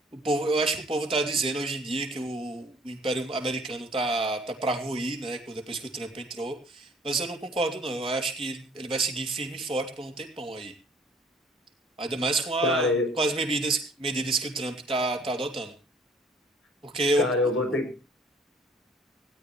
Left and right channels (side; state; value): both; normal; correlation 0.56